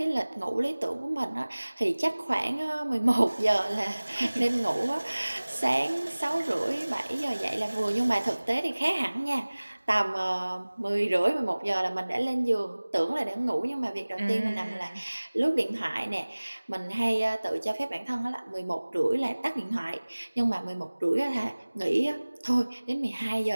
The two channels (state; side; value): inverted; both; correlation -1.00